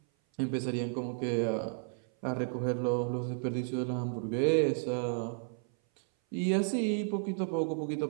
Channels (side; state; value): left; silent; 56 dB below the other